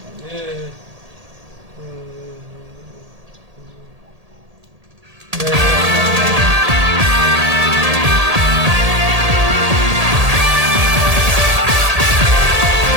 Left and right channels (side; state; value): left; late; 1.8 ms